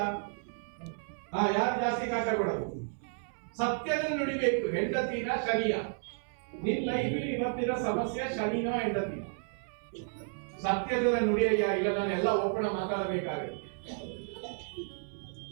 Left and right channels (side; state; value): left; silent; 56 dB below the other